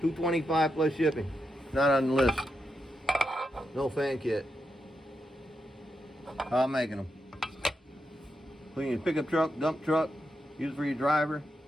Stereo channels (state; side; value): normal; both; correlation 0.85